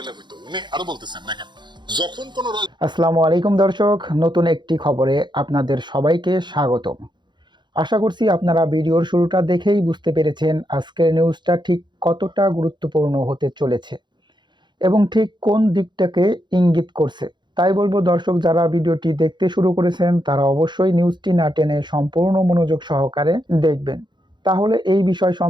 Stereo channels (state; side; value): late; left; 0.22 ms